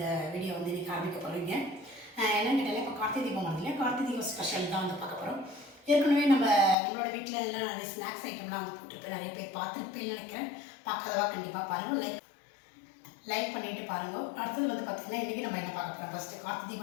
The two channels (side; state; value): right; drops out; at 6.8 s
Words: வீடியோ இன்றைக்கி ஆரம்பிக்க போகிறீங்க. என்னென்னு கேட்டாலே இப்போ கார்த்திகை தீபம் வருது இல்லையா, கார்த்திகை தீபம் ஸ்பெஷல் தான் பார்க்க போகிறோம். ஏற்கனவே நம்மளோட வீட்டில் எல்லாம் நிறைய ஸ்நாக்ஸ் ஐட்டம்லாம் போட்டுருப்பேன், நிறைய பேர் பார்த்துருப்பேன்னு நினைக்கிறேன். பார்க்காதவா கண்டிப்பாக பாருங்கள், லைக் பண்ணிவிட்டு பாருங்கள். அடுத்தது பார்த்திங்கன்னா இன்றைக்கி நம்ம என்ன பார்க்க போகிறோம், ஃபஸ்ட்டு கார்த்திகை